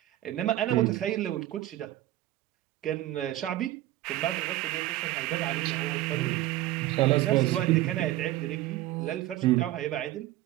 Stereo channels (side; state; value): left; quieter; 15.3 dB